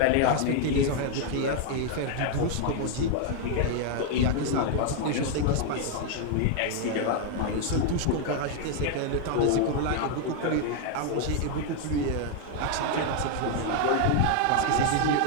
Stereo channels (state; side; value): different; both; correlation 0.00